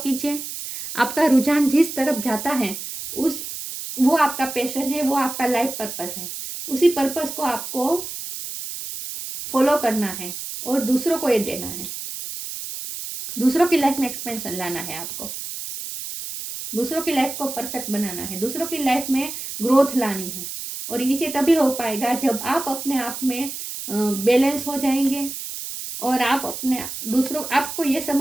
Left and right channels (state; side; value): noise; right; hiss, 8 dB below the sound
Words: आपका रुझान जिस तरफ जाता है वो आपका पैशन है, वो आपका लाइफ पर्पस है, उसी पर्पस को आपको फॉलो करना है, और दूसरों को ये देना है। दूसरों की लाइफ में एक्सपेंशन लाना है आपको, दूसरों की लाइफ को परफेक्ट बनाना है, दूसरों की लाइफ में ग्रोथ लानी है। और इसे तभी हो पाएगा जब आप अपने आप में बैलेंस हो जाएंगे और आप अपने दूसरों, आपको ये